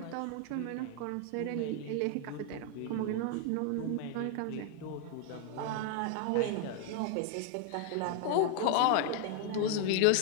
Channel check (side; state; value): both; different; correlation 0.00